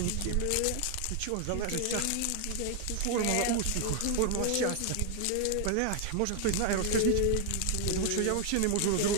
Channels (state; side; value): different; both; correlation 0.00